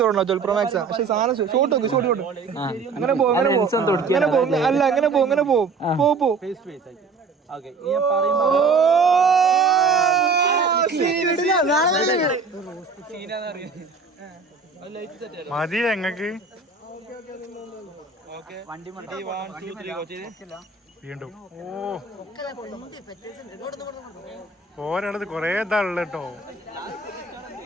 12 Pro Max, പക്ഷെ സാധനം ഷോട്ട് നോക്ക്, ഷോട്ട് അങ്ങനെ പോകും, അല്ല അങ്ങനെ പോകും. മതി ഞങ്ങക്ക് വീണ്ടും. ഓരോടത്ത് കൊറേ ഇതാണല്ലോ കേട്ടോ.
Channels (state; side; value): quieter; left; 4.6 dB